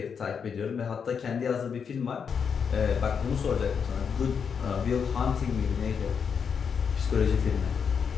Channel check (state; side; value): quieter; right; 6.6 dB